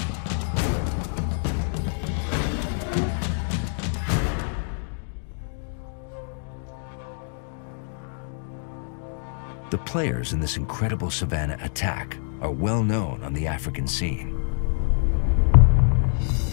The players in this incredible savanna attack are well known on the African scene.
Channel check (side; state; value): right; silent; digital silence